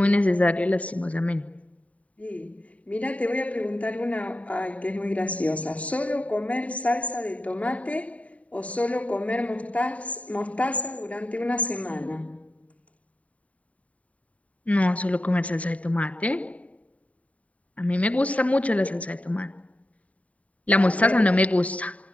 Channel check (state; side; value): late; right; 0.068 ms